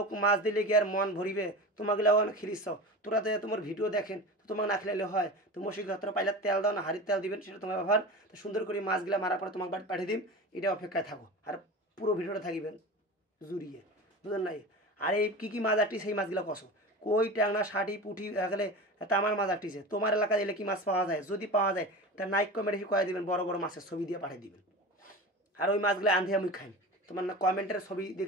মাছ দিলে কি আর মন ভরিবে? তোমাগুলো অনেক খিরিস তোরা তো তোমার ভিডিও দেখেন তো তোমাকে না খেলে হয় তো মশিঘতরা পাইলে তেল দাও না হাড়ির তেল দিবেন সেটা তোমার ব্যবহার। তো সুন্দর করে মাছগুলো মারার পরে তোমাকে বাড়ি পাঠিয়ে দিন এটা অপেক্ষায় থাকো আর পুরো ভিডিওটা থাকিবেন জুড়িয়ে বুঝলেন নাই। আর এই কী কী মাছ আটটি সেই মাছগুলো কষো কই ট্যাংরা ষাটি পুঁটি গেলে তামার মাছ আটটিছে তোমার এলাকায় এলে কি মাছ পাওয়া যায়? যদি পাওয়া যায় তা নাইক কমেন্টে কয়ে দিবেন বড় বড় মাছের ছবি দিয়ে পাঠিয়ে দিবেন। আর ওই মাছগুলো আন্ধিয়ে আমি খাই তোমার না কমেন্টের ছবি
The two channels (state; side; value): normal; both; correlation 0.30